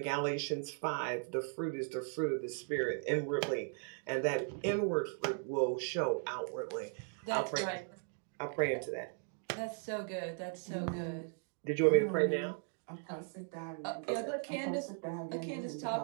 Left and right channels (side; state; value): left; silent; 53 dB below the other